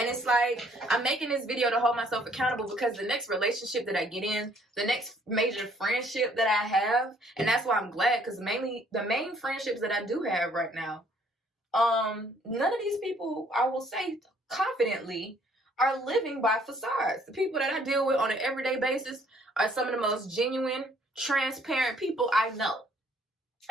it's like, I'm making this video to hold myself accountable because the next relationship that I get in, the next major friendship that I have, and that's why I'm glad, because mainly the main friendships that I do have right now, none of these people, I will say confidently, are living by facades. The people that I deal with on an everyday basis are some of the most genuine, transparent people I know.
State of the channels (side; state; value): both; normal; correlation 0.62